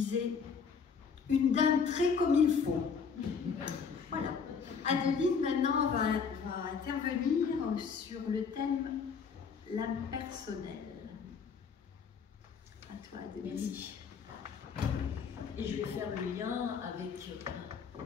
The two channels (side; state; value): right; quieter; 5.9 dB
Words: « une dame très comme il faut ». Voilà. Adeline, maintenant, va intervenir sur le thème « l'âme personnelle ». À toi, Adeline. Merci. Et je vais faire le lien avec...